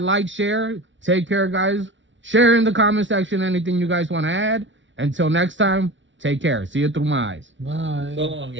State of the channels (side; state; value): left; late; 0.55 ms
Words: like, share. Take care, guys. Share in the comment section anything you guys want to add. Until next time, take care. See you through my eyes. Bye. So long,